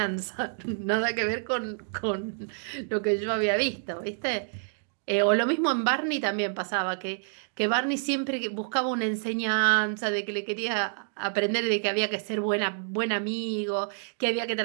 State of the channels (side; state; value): left; silent; digital silence